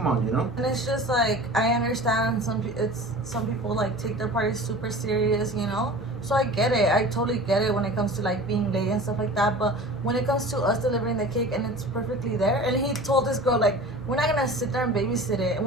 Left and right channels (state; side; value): normal; both; correlation 0.38